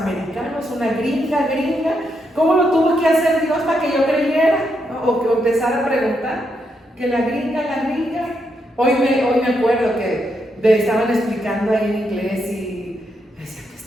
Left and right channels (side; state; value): both; normal; correlation 0.80